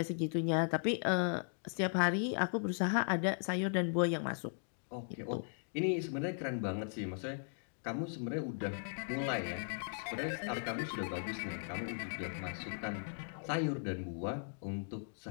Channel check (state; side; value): silent; right; digital silence